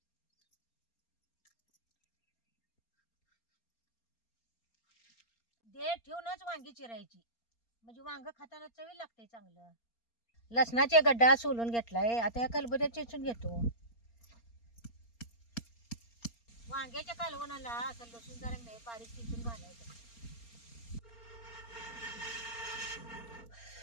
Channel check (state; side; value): late; right; 4.3 ms